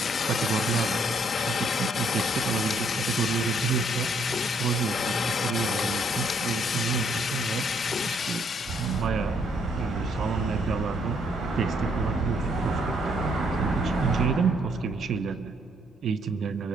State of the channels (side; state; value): both; normal; correlation 0.69